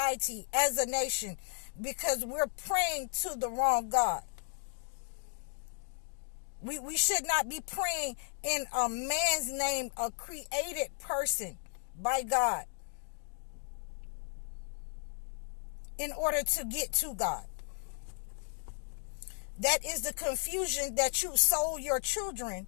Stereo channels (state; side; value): silent; right; digital silence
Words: as a nation, because we're praying to the wrong God. We should not be praying in a man's name, a created person by God, in order to get to God. That is the confusion that you sold your children.